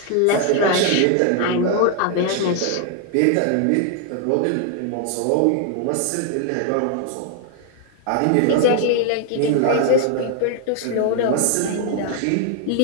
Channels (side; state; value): both; different; correlation 0.00